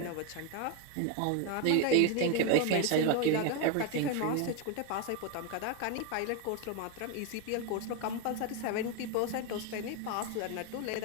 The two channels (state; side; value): different; both; correlation 0.01